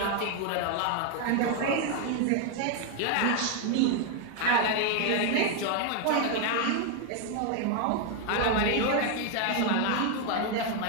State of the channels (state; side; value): different; both; correlation 0.00